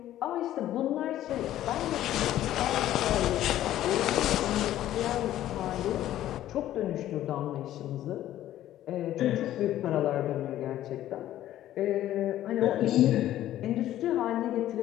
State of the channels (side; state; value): right; quieter; 13.1 dB